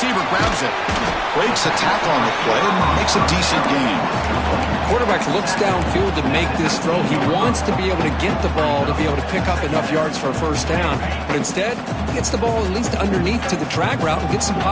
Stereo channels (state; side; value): identical; both; correlation 1.00